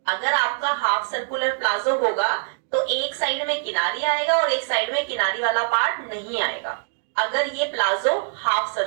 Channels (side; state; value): left; silent; digital silence